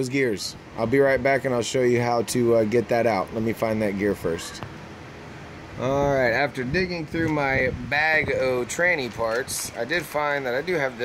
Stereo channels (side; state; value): both; identical; correlation 1.00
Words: gears. I'll be right back and I'll show you how to get that out. Let me find that gear first. Alright, after digging through my bag of tranny parts, I did find that I do have